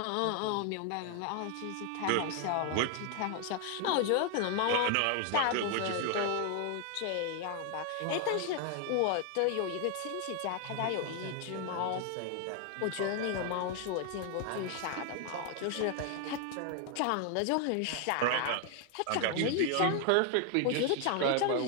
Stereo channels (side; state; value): both; different; correlation 0.00